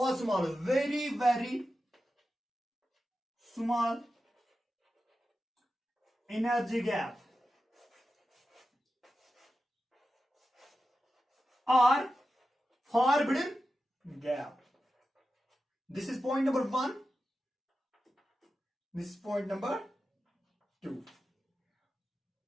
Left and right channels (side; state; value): both; normal; correlation 0.92